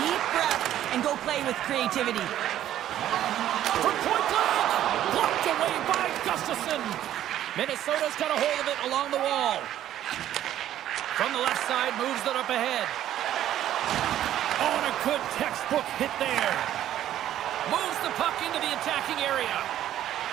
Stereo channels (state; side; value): quieter; left; 12.0 dB